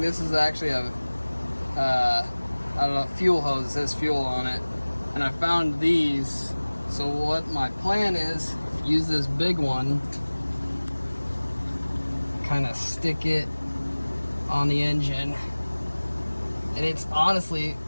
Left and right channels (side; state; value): both; inverted; correlation -1.00